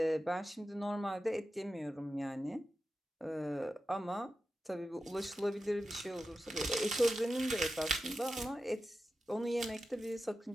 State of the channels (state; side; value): normal; both; correlation 0.92